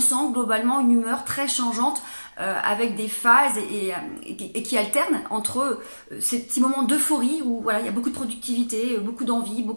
globalement une humeur très changeante avec des phases et qui alternent entre ces petits moments d'euphorie où voilà, il y a beaucoup de productivité, beaucoup d'envie,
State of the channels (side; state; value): both; inverted; correlation -1.00